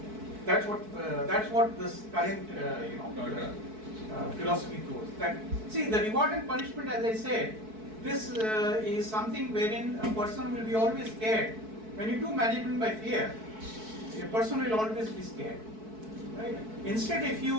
That's what this current philosophy goes. That, see, the reward and punishment, as I said, this is something wherein a person will be always scared. When you do management by fear, a person will always be scared. Right? Instead, if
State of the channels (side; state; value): left; late; 4.6 ms